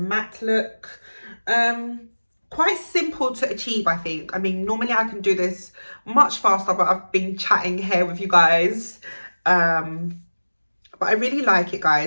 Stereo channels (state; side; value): inverted; both; correlation -1.00